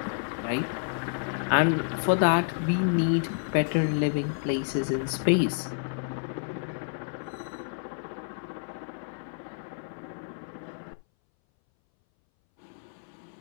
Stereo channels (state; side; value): silent; right; 58 dB below the other